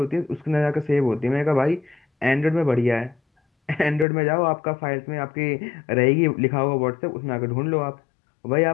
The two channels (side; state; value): right; drops out; at 4.0 s